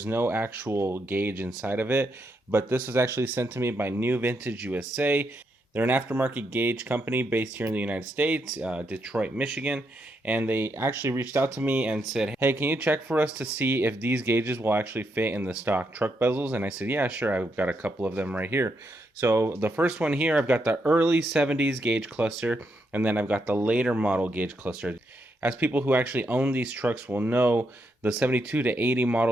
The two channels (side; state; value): both; normal; correlation 0.80